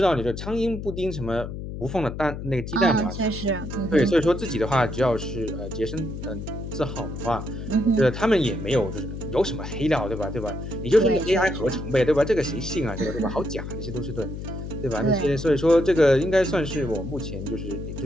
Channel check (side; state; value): left; noise; hum, 7 dB below the sound